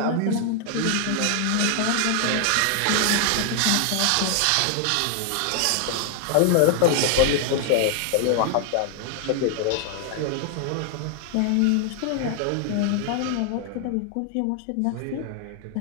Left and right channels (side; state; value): both; different; correlation 0.00